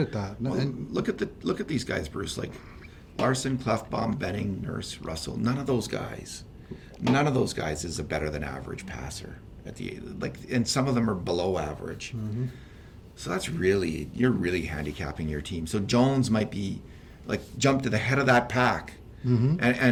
that. Well, and look at these guys, Bruce. Like Larson, Klefbom, Benning, Nurse, Russell. None of those guys is a better than average passer and some of them are below average. So you're really handicapping your team. So Jones might be jump to the head of that pack.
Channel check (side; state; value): both; identical; correlation 1.00